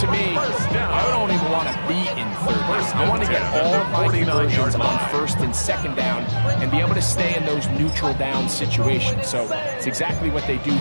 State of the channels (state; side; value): inverted; both; correlation -1.00